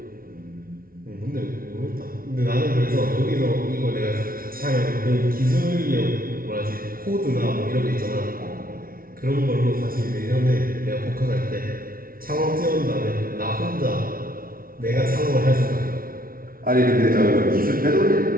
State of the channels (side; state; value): left; late; 0.42 ms